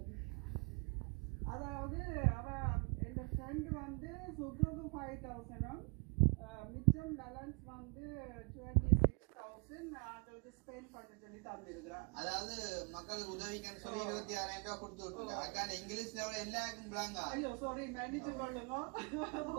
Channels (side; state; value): left; quieter; 34.4 dB